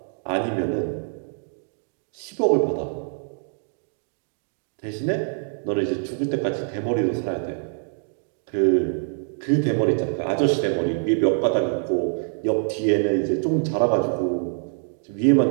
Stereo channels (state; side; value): silent; left; 62 dB below the other